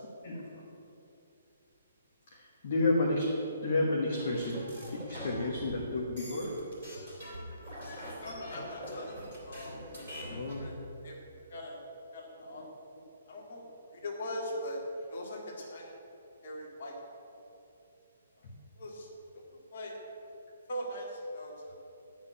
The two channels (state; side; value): inverted; both; correlation -0.70